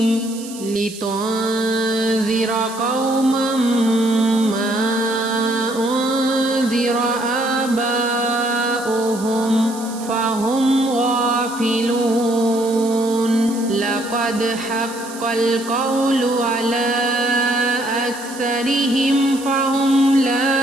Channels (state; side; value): noise; right; hiss, 15 dB below the sound